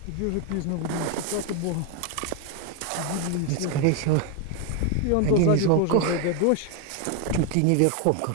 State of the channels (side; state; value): both; different; correlation 0.01